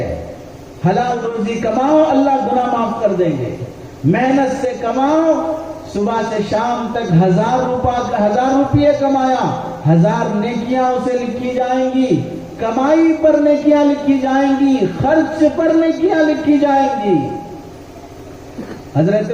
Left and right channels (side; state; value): both; identical; correlation 1.00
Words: حلال روزی کماؤ، اللہ گناہ معاف کر دیں گے۔ محنت سے کماؤ، صبح سے شام تک 1000 روپیے کمایا، 1000 نیکیاں اسے لکھی جائیں گی، کمائی پر نیکیاں لکھی جائیں گی، خرچ پر نیکیاں لکھی جائیں گی۔ حضرت